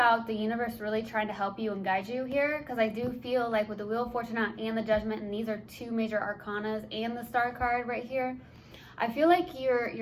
the universe really trying to help you and guide you here, because I do feel like with the Wheel of Fortune and the Judgment, and these are two major arcanas, and the Star card right here, I feel like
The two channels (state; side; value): identical; both; correlation 1.00